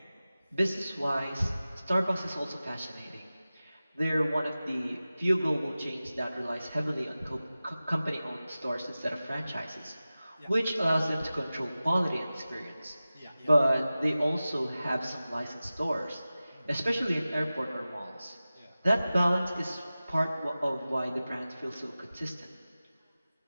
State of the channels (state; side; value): inverted; both; correlation -0.96